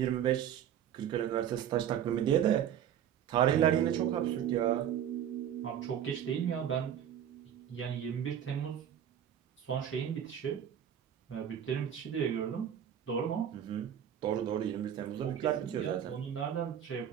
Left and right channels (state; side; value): quieter; left; 9.7 dB